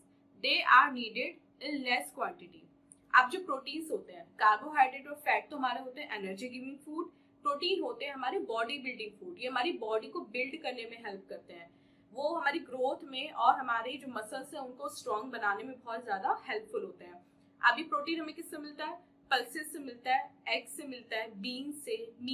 They are needed in less quantity. अब जो proteins होते हैं, carbohydrate और fat तो हमारे होते हैं energy giving food, protein होते हैं हमारे बॉडी बिल्डिंग फूड। ये हमारी बॉडी को बिल्ड करने में हेल्प करते हैं, वो हमारी ग्रोथ में और हमारे जो मसल्स हैं उनको स्ट्रॉन्ग बनाने में बहुत ज्यादा हेल्पफुल होते हैं। अभी प्रोटीन हमें किससे मिलता है, पल्सेस से मिलता है, एग से मिलता है, बीन से,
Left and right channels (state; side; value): identical; both; correlation 1.00